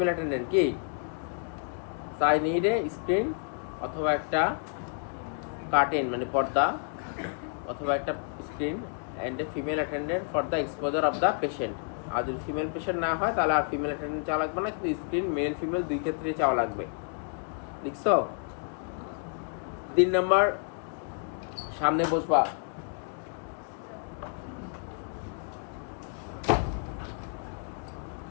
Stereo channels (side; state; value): right; silent; 55 dB below the other